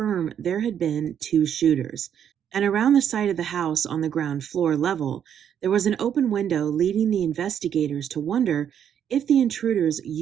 there had been two shooters. And around the side of the house on the ground floor level, there was an open window leading the investigators to wonder if the intruders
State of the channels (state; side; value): quieter; left; 9.0 dB